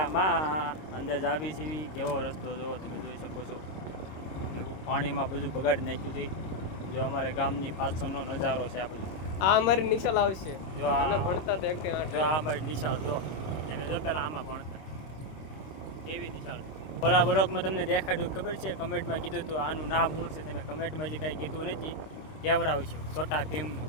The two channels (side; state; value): right; late; 26 ms